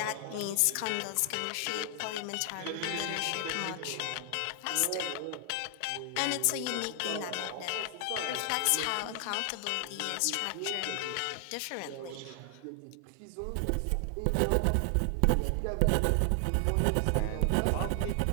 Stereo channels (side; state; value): both; different; correlation 0.00